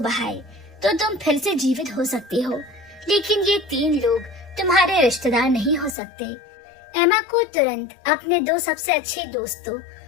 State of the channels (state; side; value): drops out; right; at 6.0 s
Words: बहाए, तो तुम फिर से जीवित हो सकती हो। लेकिन ये 3 लोग तुम्हारे रिश्तेदार नहीं हो सकते। एमा को तुरंत अपने 2 सबसे अच्छे दोस्तों